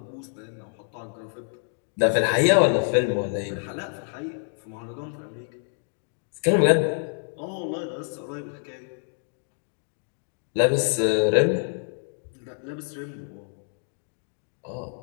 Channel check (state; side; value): silent; right; 60 dB below the other